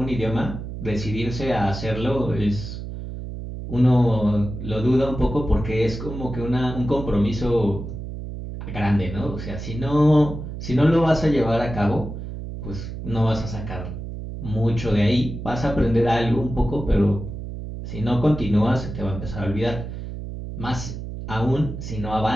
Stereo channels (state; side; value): noise; right; hum, 8 dB below the sound